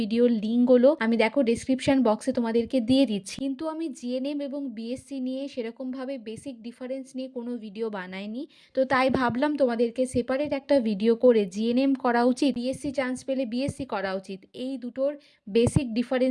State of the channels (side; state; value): both; identical; correlation 1.00